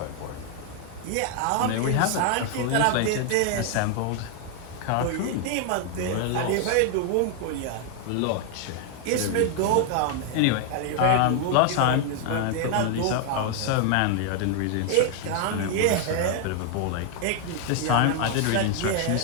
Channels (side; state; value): both; different; correlation 0.00